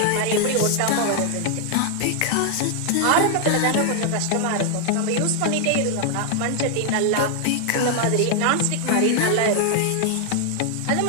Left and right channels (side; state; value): both; different; correlation 0.00